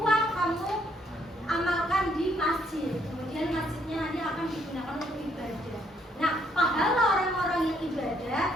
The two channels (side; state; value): both; normal; correlation 0.69